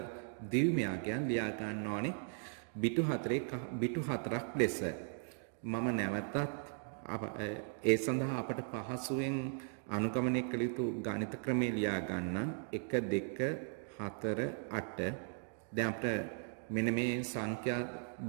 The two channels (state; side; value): silent; left; 53 dB below the other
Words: ද්විමය අගයන් ලියා ගන්න ඕනේ බිටු 4ක් ලෙස. මම නැවතත් ඒ සඳහා අපට පහසුවෙන් අනුගමනය කළ යුතු ගණිත ක්‍රමය ලියා ගන්න 1 2 4 8 දැන් අපිට මෙන්න මේ සංඛ්‍යා